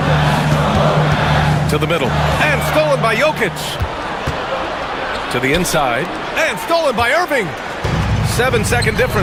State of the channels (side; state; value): both; identical; correlation 1.00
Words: To the middle. And stolen by Jokic. To the inside. And stolen by Irving. 7-second